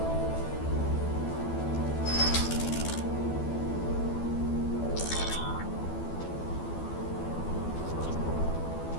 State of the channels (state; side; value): late; right; 12 ms